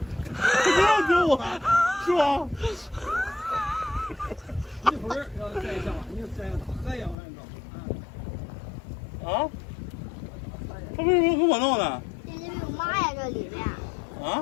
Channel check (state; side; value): drops out; right; at 7.2 s